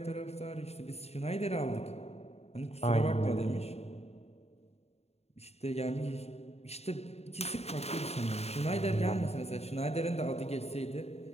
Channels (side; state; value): right; late; 0.30 ms